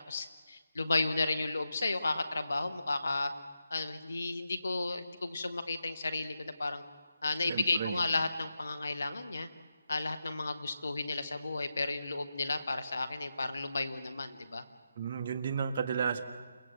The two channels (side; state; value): both; inverted; correlation -0.87